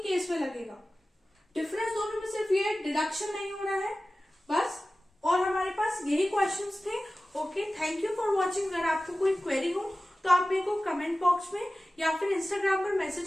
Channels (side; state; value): both; normal; correlation 0.96